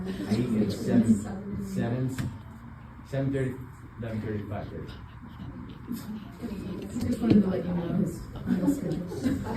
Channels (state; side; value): identical; both; correlation 1.00